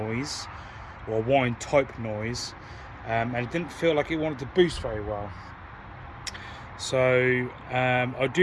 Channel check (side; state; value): both; identical; correlation 1.00